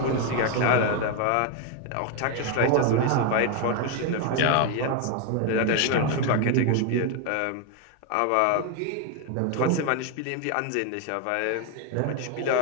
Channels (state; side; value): different; both; correlation 0.01